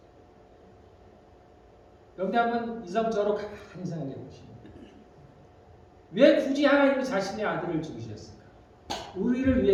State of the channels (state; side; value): identical; both; correlation 1.00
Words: 여러분들 한번 이성적으로 가만히 생각해 보십니다. 왜 굳이 하나님은 자신의 아들을 죽이셨을까? 우리를